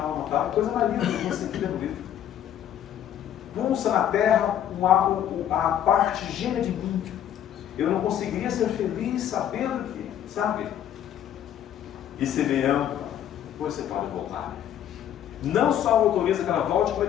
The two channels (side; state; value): right; quieter; 10.4 dB